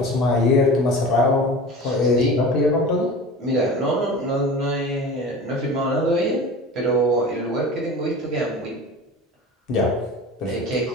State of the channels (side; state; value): both; normal; correlation 0.35